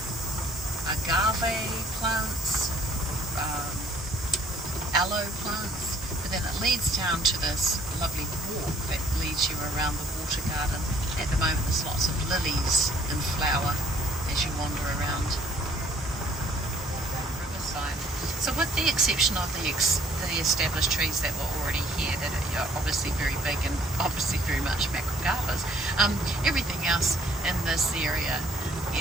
agave plants, aloe plants, but then it leads down to this lovely walk that leads you around the water garden. At the moment there's lots of lilies in flower as you wander around the riverside. So with the exception of the established trees that were already here, that are obviously very big and obviously very much macrogarbas, everything else in this area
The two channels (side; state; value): both; normal; correlation 0.59